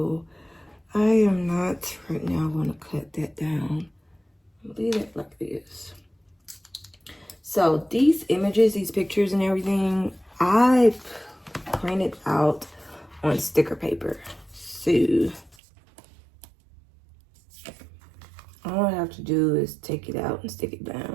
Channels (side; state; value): left; drops out; at 15.6 s